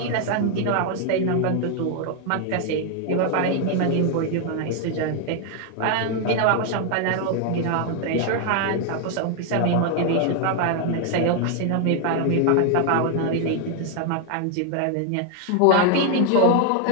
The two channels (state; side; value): different; both; correlation 0.00